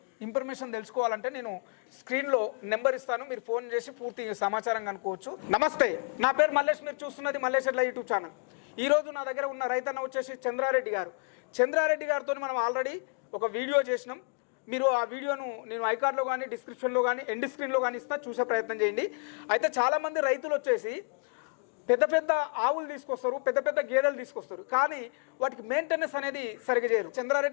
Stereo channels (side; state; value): right; quieter; 37.8 dB